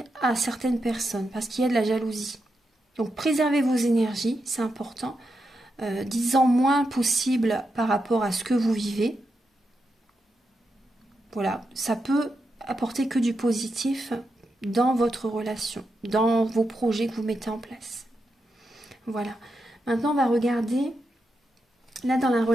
à certaines personnes, parce qu'il y a de la jalousie. Donc préservez vos énergies, c'est important. Dites-en moins possible par rapport à ce que vous vivez. Voilà, ça peut apporter que du positif dans votre relation, dans vos projets que vous mettez en place. Voilà. Maintenant, on va regarder, là, dans la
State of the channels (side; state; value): both; normal; correlation 0.86